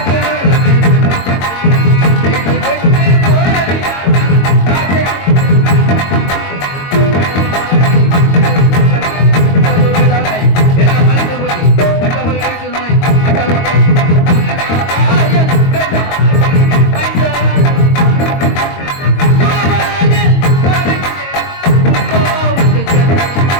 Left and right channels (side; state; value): right; late; 22 ms